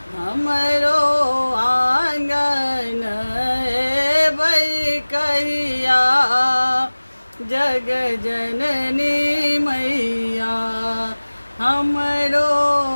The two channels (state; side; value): inverted; both; correlation -1.00